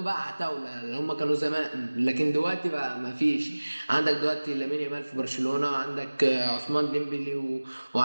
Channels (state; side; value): inverted; both; correlation -1.00